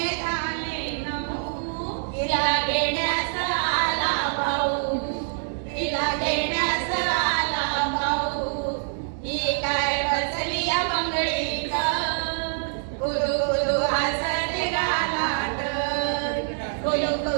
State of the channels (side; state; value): left; silent; digital silence